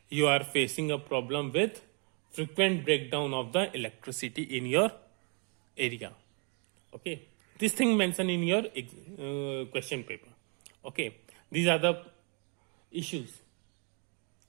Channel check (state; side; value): quieter; left; 36.4 dB